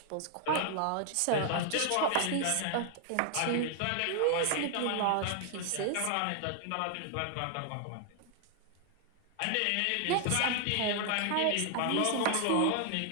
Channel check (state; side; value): different; both; correlation 0.00